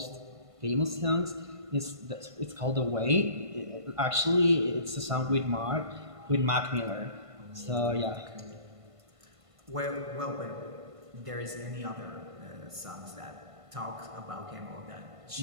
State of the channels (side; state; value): left; late; 1.5 ms